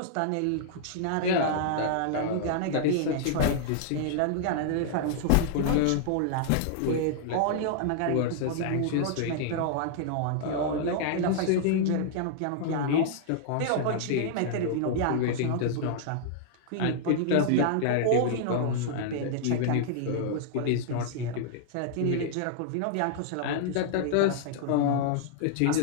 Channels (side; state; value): both; different; correlation -0.01